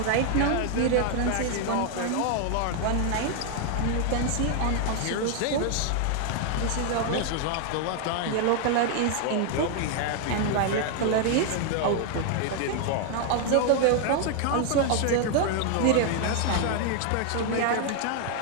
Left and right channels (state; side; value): different; both; correlation 0.00